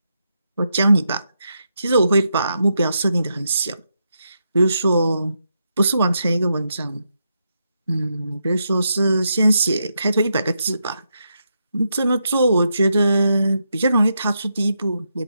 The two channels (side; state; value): both; inverted; correlation -0.83